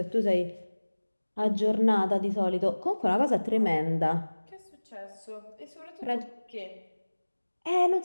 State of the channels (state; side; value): inverted; both; correlation -1.00